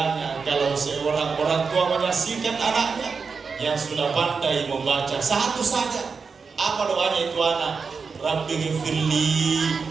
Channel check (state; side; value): quieter; left; 5.1 dB